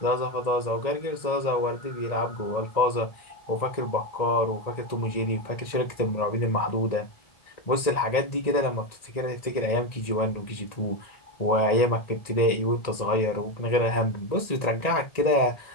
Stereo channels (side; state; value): right; late; 1.8 ms